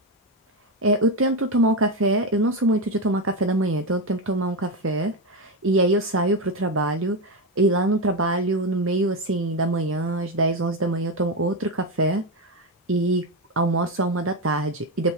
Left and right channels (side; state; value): both; normal; correlation 0.12